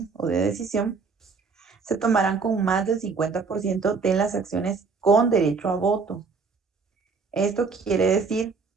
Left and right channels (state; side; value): quieter; left; 4.9 dB